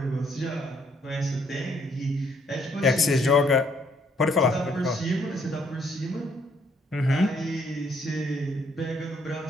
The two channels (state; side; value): normal; both; correlation 0.68